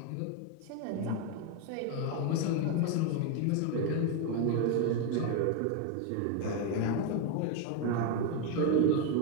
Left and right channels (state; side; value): different; both; correlation 0.01